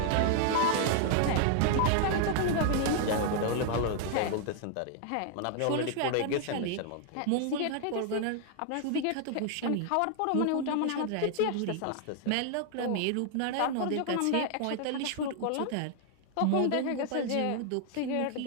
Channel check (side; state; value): both; different; correlation 0.00